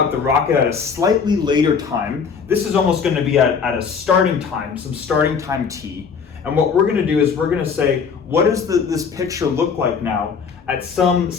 the rocket at a slightly later time. This is almost going to be at a starting time, some starting time t. And what we're going to do is we're going to say, what does this picture look like now at some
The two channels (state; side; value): quieter; right; 6.0 dB